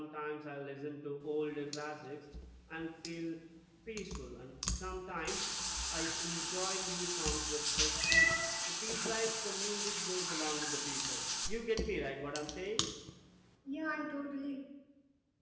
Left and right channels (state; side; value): identical; both; correlation 1.00